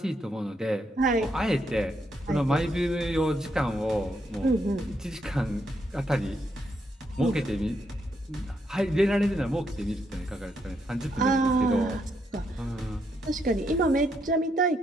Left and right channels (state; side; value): normal; both; correlation 0.77